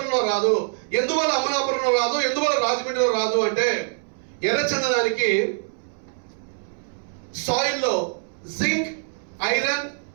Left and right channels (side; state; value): left; silent; 63 dB below the other